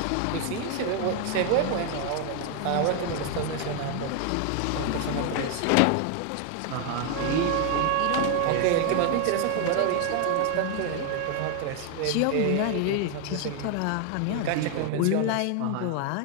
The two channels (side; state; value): both; different; correlation 0.00